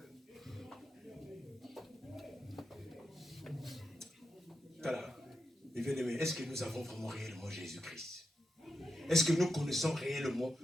Voilà. Mais bien aimé, est-ce que nous avons vraiment réellement Jésus-Christ? Est-ce que nous connaissons réellement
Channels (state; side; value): normal; both; correlation 0.87